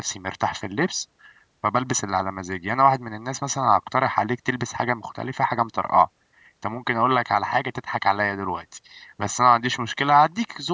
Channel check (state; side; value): identical; both; correlation 1.00